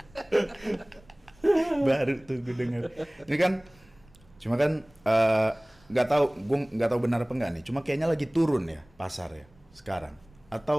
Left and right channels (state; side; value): noise; right; rumble, 29 dB below the sound